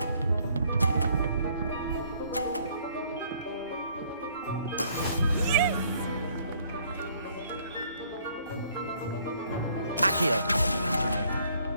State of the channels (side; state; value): both; inverted; correlation -0.63